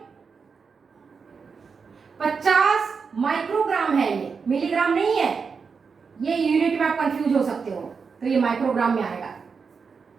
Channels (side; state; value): left; quieter; 5.5 dB